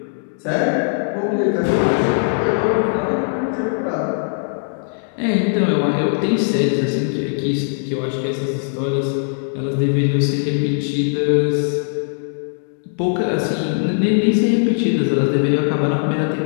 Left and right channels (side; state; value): right; silent; digital silence